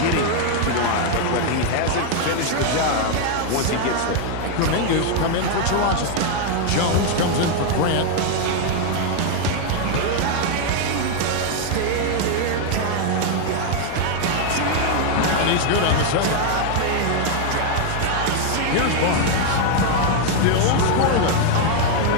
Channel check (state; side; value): different; both; correlation 0.00